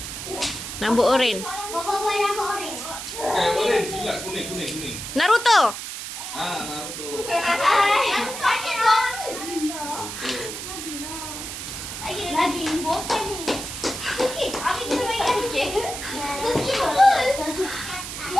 Rambut oren. Boboiboy rambut oren. Oren silap kuning. Naruto. Naruto. Lagi bosan ni. Okey, Abi kita mainkan okey. Okey betul.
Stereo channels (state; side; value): noise; right; hiss, 7 dB below the sound